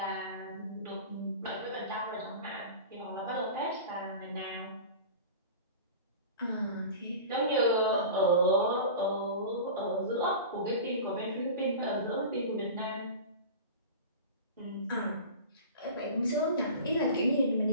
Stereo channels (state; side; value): inverted; both; correlation -0.34